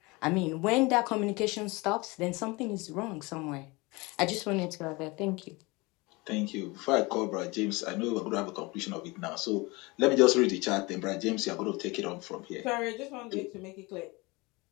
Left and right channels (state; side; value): quieter; right; 24.8 dB